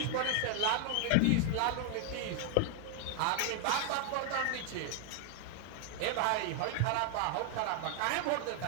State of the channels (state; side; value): different; both; correlation 0.00